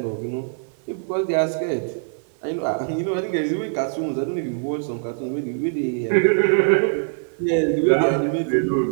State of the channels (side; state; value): left; silent; digital silence